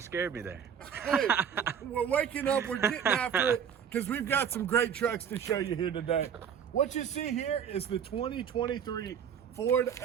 scared me there. Hey, we're waking up, we're getting after it, because we've got some great trucks to show you here today. What you see here is the 2023 Ford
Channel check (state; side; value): quieter; left; 7.9 dB